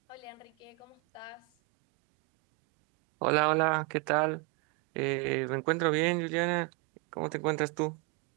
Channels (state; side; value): quieter; left; 24.7 dB